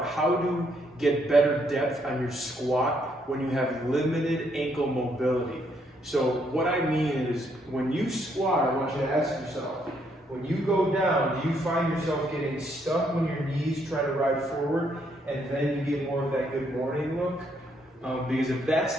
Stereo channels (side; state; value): both; normal; correlation 0.72